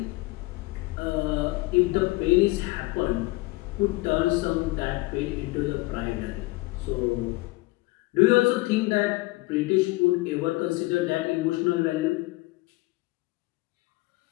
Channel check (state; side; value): quieter; right; 21.9 dB